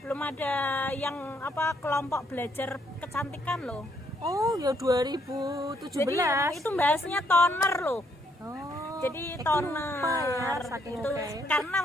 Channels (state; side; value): normal; both; correlation 0.71